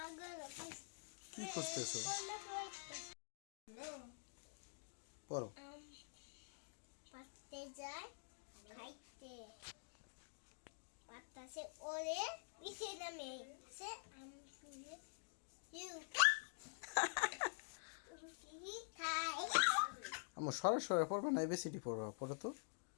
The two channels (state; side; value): silent; right; digital silence